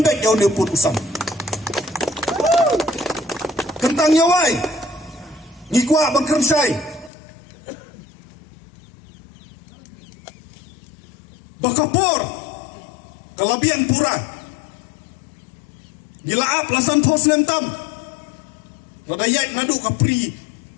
yo ne put usam kentang yawai ngikwa ban kersai bakapor kalabian pura gilaap lasan pos lemtam lada yait nadu ka pre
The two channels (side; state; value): right; drops out; at 7.1 s